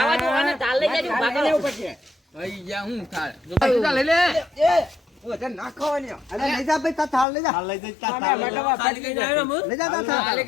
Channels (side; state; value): right; drops out; at 7.2 s